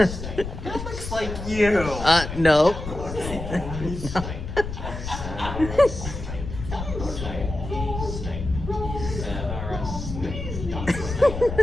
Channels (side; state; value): left; noise; rumble, 7 dB below the sound